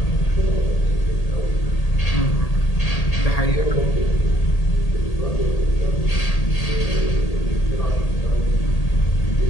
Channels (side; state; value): right; late; 1.8 ms